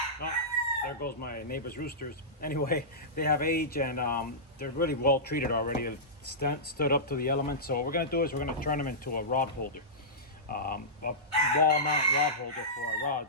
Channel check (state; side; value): normal; both; correlation -0.17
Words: Oh, there goes my neighbor's roosters. Anyway, they have age and they're really well treated already. They've stood up to the elements. So what we're going to do is we're going to turn them into a rod holder. A wall mount rod holder for our